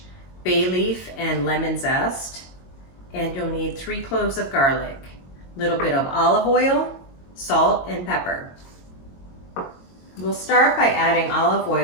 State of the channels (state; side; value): late; right; 22 ms